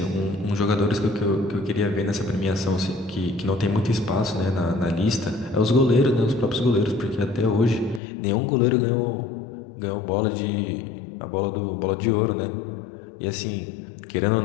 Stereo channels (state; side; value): drops out; right; at 8.0 s